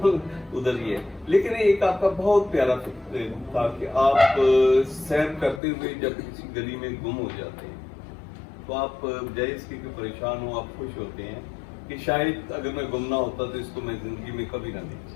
ادھر ہی ہے. لیکن ایک آپ کا بہت پیارا تھا کہ آپ سیر کرتے ہوئے جب کسی گلی میں گم ہو جاتے ہیں تو آپ بجائے اس کے پریشان ہو آپ خوش ہوتے ہیں کہ شاید اگر میں گم نہ ہوتا تو اس کو میں زندگی میں کبھی نہ دیکھ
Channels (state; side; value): drops out; right; at 5.6 s